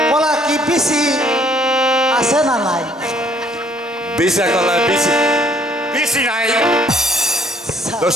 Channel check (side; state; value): both; normal; correlation 0.62